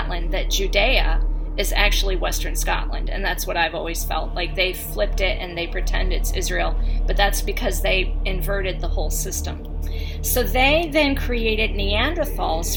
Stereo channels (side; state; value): both; identical; correlation 1.00